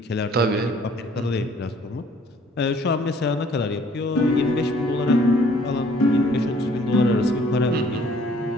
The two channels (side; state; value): both; normal; correlation 0.58